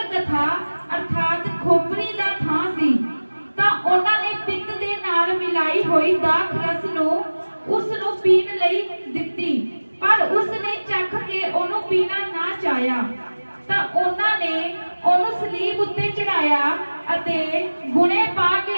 ਅਰਥਾਤ ਖੋਪਰੀ ਦਾ ਥਾਂ ਸੀ, ਤਾਂ ਉਹਨਾਂ ਨੇ ਪਿੱਤ ਦੇ ਨਾਲ ਮਿਲਾਈ ਹੋਈ ਦਾਖ ਰਸ ਨੂੰ ਉਸ ਨੂੰ ਪੀਣ ਲਈ ਦਿੱਤੀ, ਪਰ ਉਸ ਨੇ ਚੱਖ ਕੇ ਉਹਨੂੰ ਪੀਣਾ ਨਾ ਚਾਹਿਆ। ਤਾਂ ਉਹਨਾਂ ਨੇ ਉਹਨੂੰ ਸਲੀਬ ਉੱਤੇ ਚੜਾਇਆ ਅਤੇ ਗੁਣੇ ਪਾ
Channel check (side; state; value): both; inverted; correlation -1.00